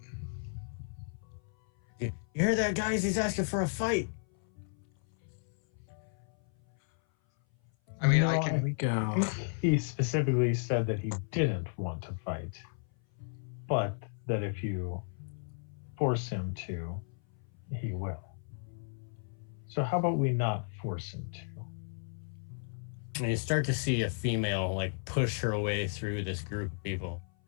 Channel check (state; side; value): silent; right; 55 dB below the other